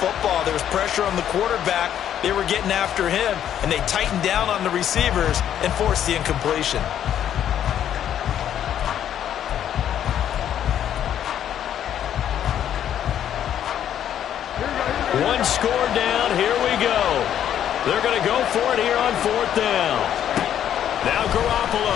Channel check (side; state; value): right; quieter; 10.2 dB